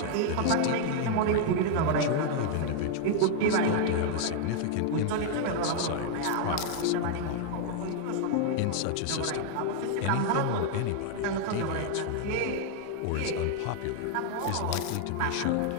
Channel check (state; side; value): different; both; correlation 0.00